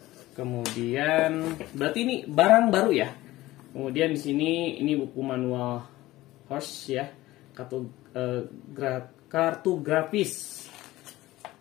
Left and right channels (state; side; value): quieter; right; 17.3 dB